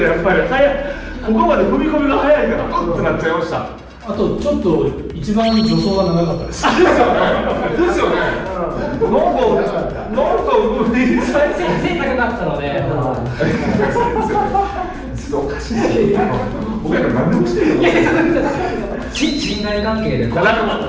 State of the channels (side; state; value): both; identical; correlation 1.00